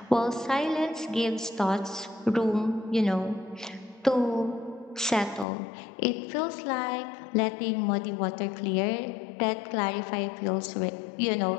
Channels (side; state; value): right; drops out; at 5.5 s